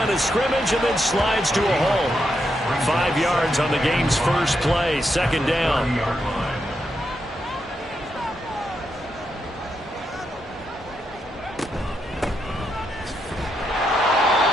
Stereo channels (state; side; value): normal; both; correlation 0.82